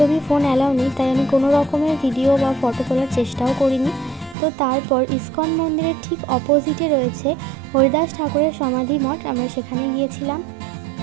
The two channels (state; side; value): drops out; left; at 4.4 s